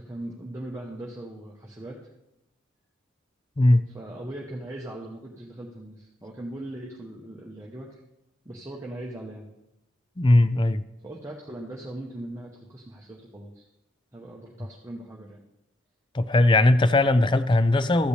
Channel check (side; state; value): both; normal; correlation 0.81